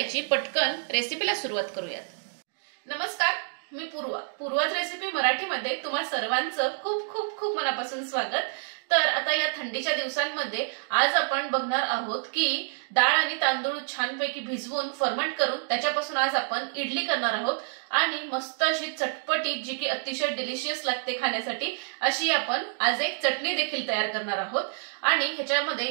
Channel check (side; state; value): left; silent; digital silence